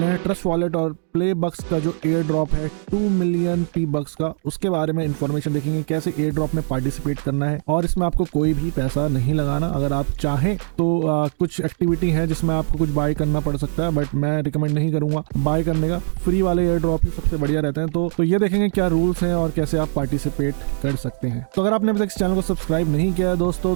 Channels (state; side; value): silent; left; digital silence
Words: हैं ट्रस्ट वॉलेट और प्ले बक्स का जो एयर ड्रॉप है 2 मिलियन पी बक्स का, उसके बारे में इन्फॉर्मेशन देखेंगे, कैसे एयर ड्रॉप में पार्टिसिपेट करना है। और इसमें आपको कोई भी पैसा नहीं लगाना। अगर आप चाहें तो कुछ एक्टिविटी है जिसमें आपको कुछ बाय करना पड़ सकता है, बट मैं रिकमेंड नहीं करूंगा बाय करने का। फ्री वाले एयर ड्रॉप ही सबसे बढ़िया रहते हैं। तो ये देखेंगे क्या रूल्स हैं और कैसे आप पार्टिसिपेट कर सकते हैं। तो अगर आपने अभी तक इस चैनल को सब्सक्राइब नहीं किया है